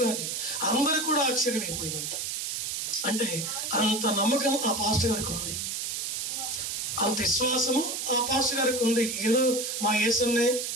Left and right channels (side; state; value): right; noise; hiss, 3 dB below the sound